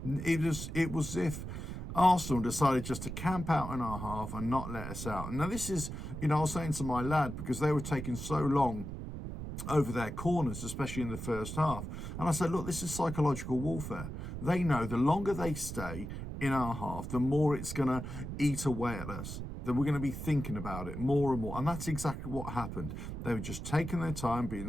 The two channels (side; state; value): right; noise; rumble, 7 dB below the sound